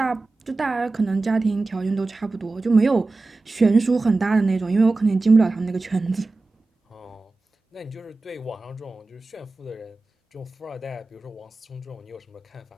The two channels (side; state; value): left; quieter; 3.4 dB